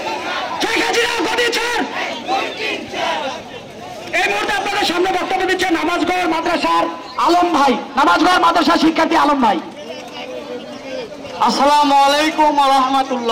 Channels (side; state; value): both; identical; correlation 1.00